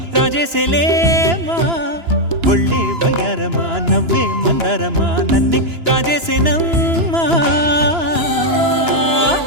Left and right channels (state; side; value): late; left; 2.9 ms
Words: రాజేసేలేమా ఒళ్ళే వయ్యారమా నవ్వే మందారమా నన్నే కాజేసేనమ్మా